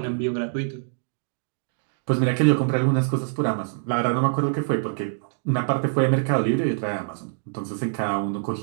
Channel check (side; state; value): left; silent; digital silence